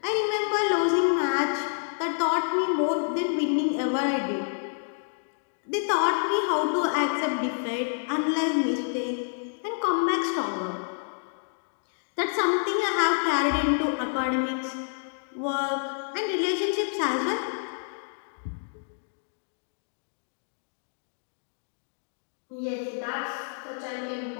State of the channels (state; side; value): silent; right; digital silence